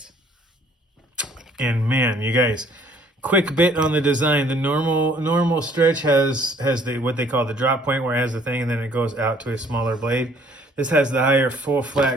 And man, you guys, quick bit on the design. The normal stretch has the what they call the drop point, where it has the thing and then it goes out to a smaller blade. This has the higher full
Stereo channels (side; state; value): both; normal; correlation 0.59